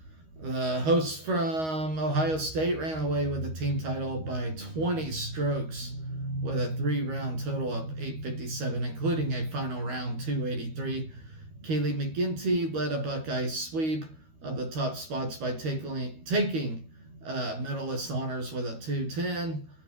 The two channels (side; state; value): left; late; 13 ms